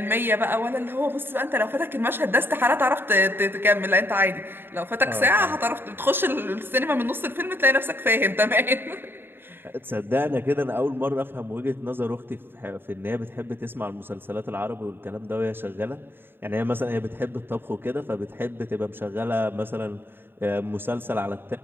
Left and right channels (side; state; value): left; late; 0.10 ms